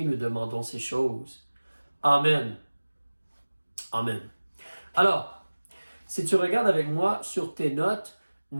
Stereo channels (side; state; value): both; inverted; correlation -1.00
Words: nous demandons ces choses. Amen. Amen. Alors, si tu regardes avec moi sur tes notes,